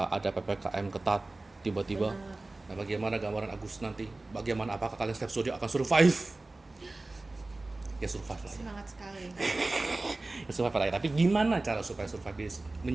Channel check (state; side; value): quieter; left; 3.1 dB